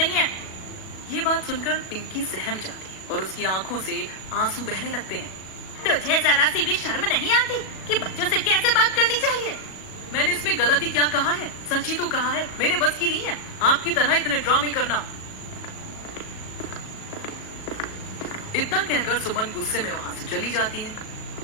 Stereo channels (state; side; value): late; right; 37 ms